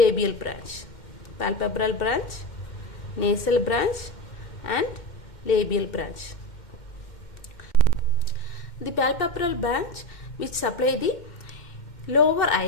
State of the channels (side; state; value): right; late; 2.1 ms